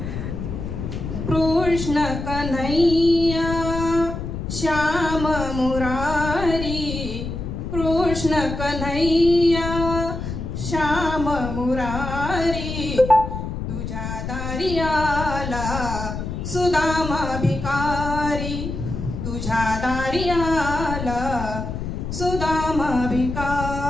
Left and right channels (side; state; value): left; noise; rumble, 5 dB below the sound